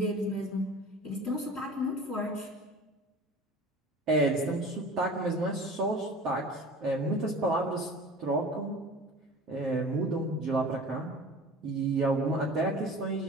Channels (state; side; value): normal; both; correlation 0.40